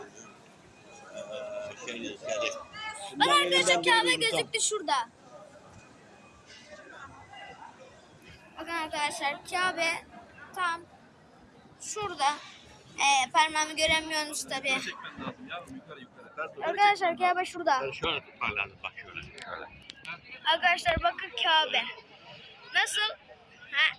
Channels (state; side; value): identical; both; correlation 1.00